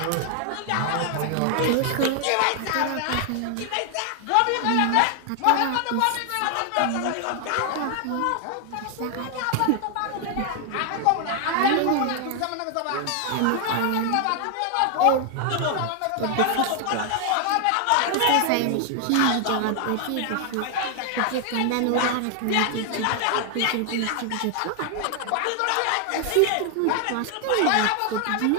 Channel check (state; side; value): different; both; correlation 0.00